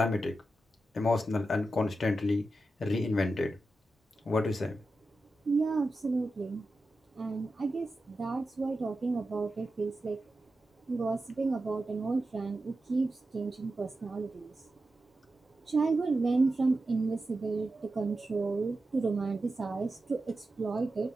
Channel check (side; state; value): both; normal; correlation 0.91